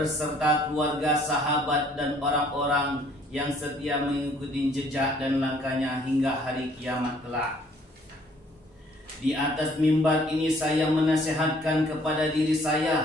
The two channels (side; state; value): both; normal; correlation 0.60